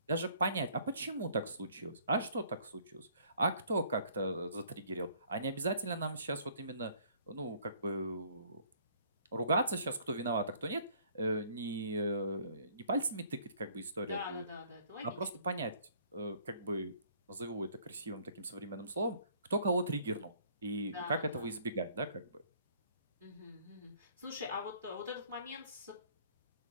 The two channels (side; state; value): both; inverted; correlation -0.59